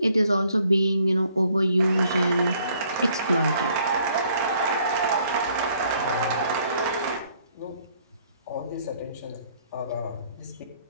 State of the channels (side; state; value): both; inverted; correlation -0.64